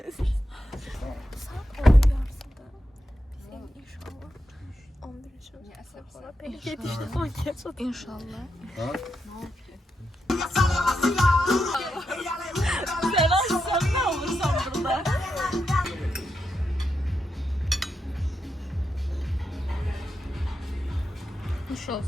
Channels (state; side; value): normal; both; correlation 0.86